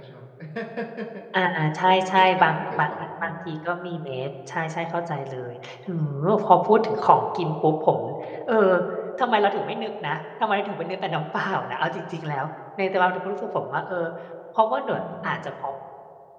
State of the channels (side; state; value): both; identical; correlation 1.00